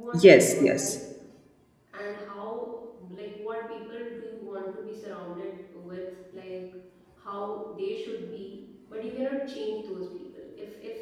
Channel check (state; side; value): identical; both; correlation 1.00